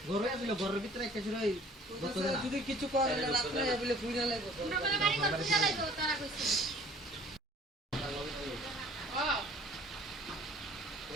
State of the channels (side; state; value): both; normal; correlation 0.52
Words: ঘরে আসলো ঘরের ভিতরে একটা ছিল যদি কিছু করে রাত্রে বলে কুইরা লাগবে